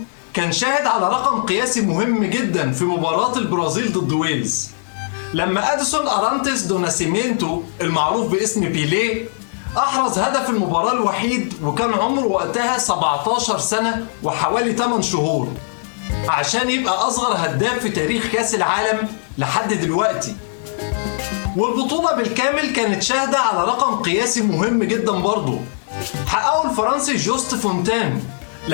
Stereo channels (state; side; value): silent; right; digital silence